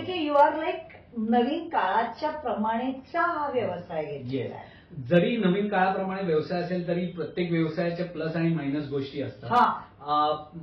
की यू आर लाईक नवीन काळाच्या प्रमाणेचा हा व्यवसाय घेतलेला आहे. जरी नवीन काळाप्रमाणे व्यवसाय असेल तरी प्रत्येक व्यवसायाच्या प्लस आणि मायनस गोष्टी असतात.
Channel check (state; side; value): identical; both; correlation 1.00